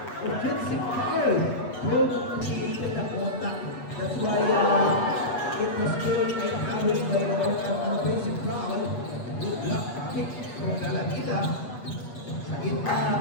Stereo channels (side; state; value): right; late; 7.7 ms